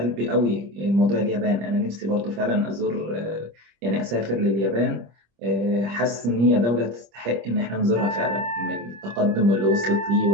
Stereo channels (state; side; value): late; left; 25 ms